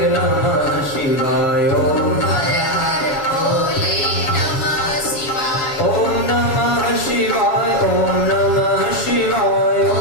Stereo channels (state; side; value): late; right; 7.2 ms